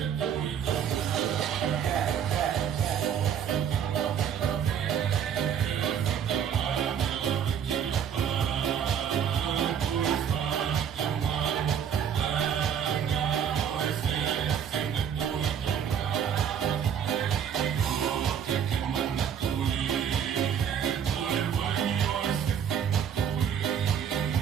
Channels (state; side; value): quieter; left; 8.3 dB